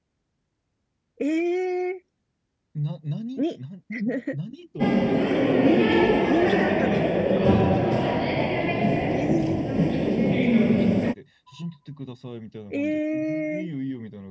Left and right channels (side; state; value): both; identical; correlation 1.00